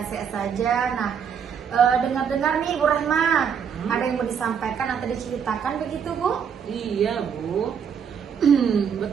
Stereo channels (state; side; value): quieter; left; 7.3 dB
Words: saja. Nah, dengar-dengar nih Ibu Rahma, ada yang mau disampaikan atau diceritakan begitu Bu? Iya Bu.